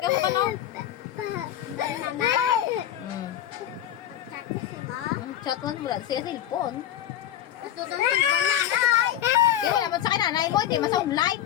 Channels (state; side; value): quieter; right; 11.5 dB